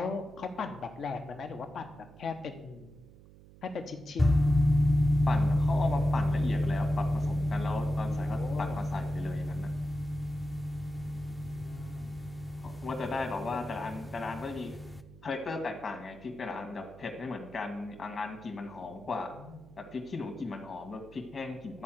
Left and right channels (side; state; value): right; noise; hum, 21 dB below the sound